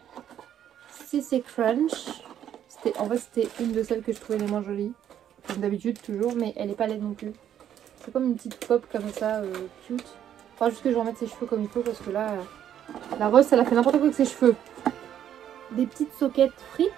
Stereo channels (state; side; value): quieter; left; 10.2 dB